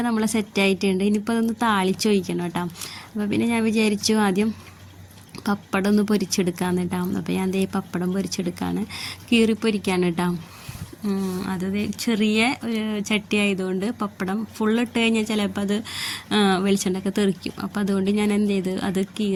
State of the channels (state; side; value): identical; both; correlation 1.00